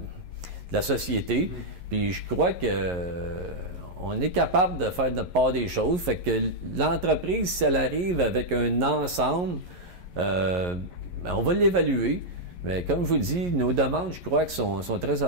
la société. Puis je crois qu'on est capable de faire notre part des choses. Fait que l'entreprise, si elle arrive avec un ensemble, on va l'évaluer. Mais comme je vous dis, nos demandes, je crois, que sont très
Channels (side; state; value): left; late; 11 ms